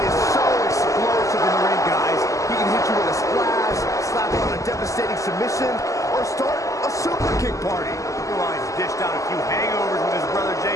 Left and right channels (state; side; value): late; right; 0.16 ms